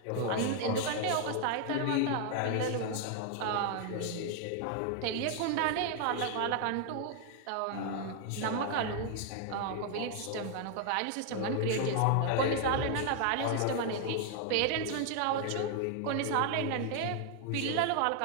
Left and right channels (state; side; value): different; both; correlation 0.00